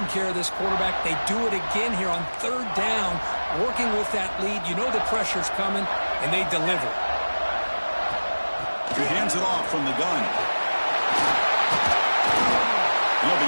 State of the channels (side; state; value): both; inverted; correlation -1.00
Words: care of this quarterback. They do it again here on 3rd down, working with that lead. You know the pressure's coming, and they deliver. He hands it off from the gun. He'll